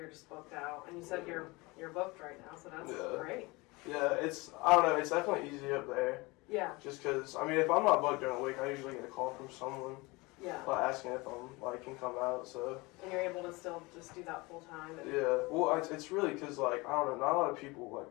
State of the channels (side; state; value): right; quieter; 24.2 dB